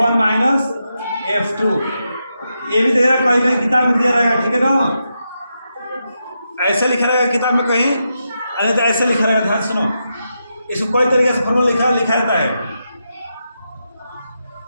माइनस F2। ये भी दे रहा कहीं कहीं किताब में दिया रहेगा, ठीक है ना? ऐसे लिखा रहेगा किताब में कहीं, अरे तो ऐसे लिखा रहेगा। ध्यान सुनो, इसको कोई तरीके से फॉर्मूला लिखा जाता है।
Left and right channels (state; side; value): inverted; both; correlation -0.86